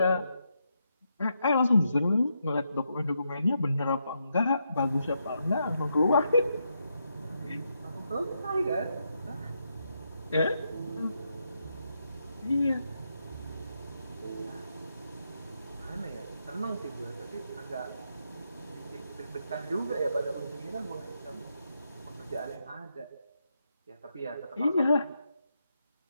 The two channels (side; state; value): both; inverted; correlation -0.81